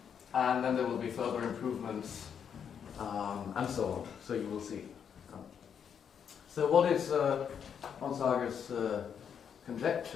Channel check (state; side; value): quieter; right; 7.7 dB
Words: And then there will be further improvements and so on. So you will see. So what is Onsager's